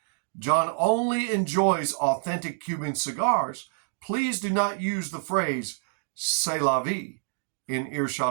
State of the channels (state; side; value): silent; left; digital silence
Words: John only enjoys authentic Cuban cigars. Please do not use the phrase "c'est la vie" in